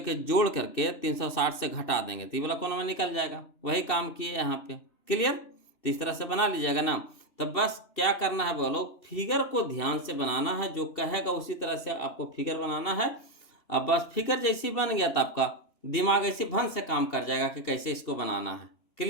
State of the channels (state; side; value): late; right; 2.9 ms